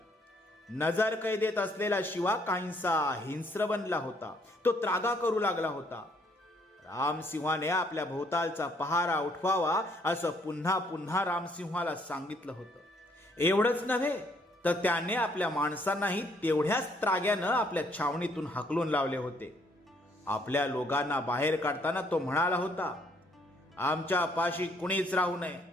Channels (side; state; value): both; normal; correlation 0.67